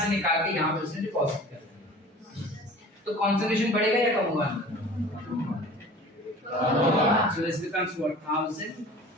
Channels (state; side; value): normal; both; correlation 0.43